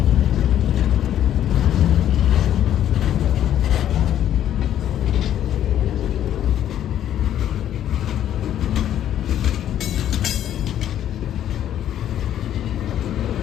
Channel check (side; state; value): right; quieter; 11.0 dB